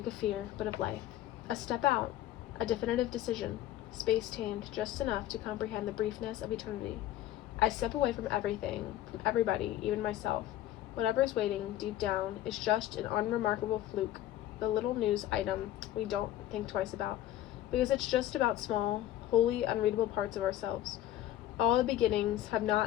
of fear, but of life. A step out, a definitive decision, space tamed just enough to comprehend the briefness of eternity. I step away from everything, from everybody, even myself. Whatever is waiting deep down is just an unremarkable fluke, the little news item we don't think twice about, because it's just about small, wholly unreadable parts of ourselves. All the beginnings have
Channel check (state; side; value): quieter; right; 13.0 dB